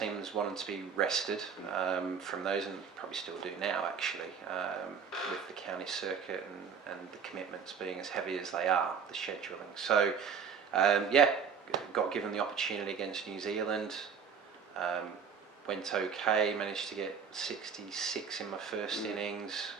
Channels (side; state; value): left; quieter; 6.6 dB